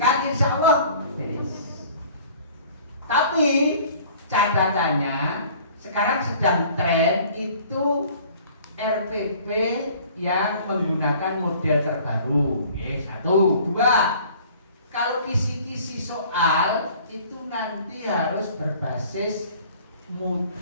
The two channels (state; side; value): inverted; both; correlation -0.50